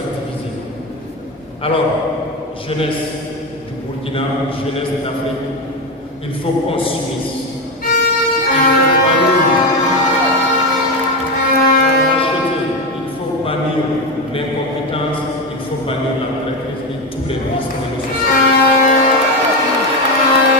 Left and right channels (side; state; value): both; normal; correlation 0.14